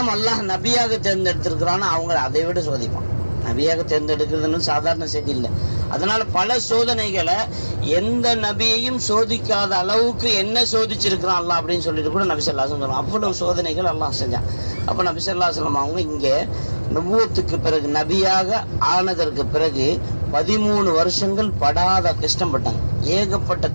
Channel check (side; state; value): both; inverted; correlation -1.00